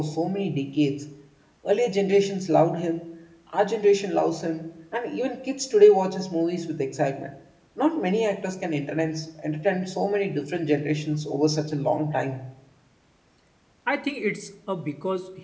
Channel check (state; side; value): identical; both; correlation 1.00